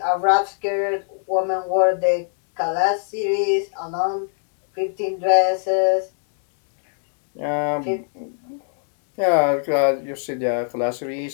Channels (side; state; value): right; silent; digital silence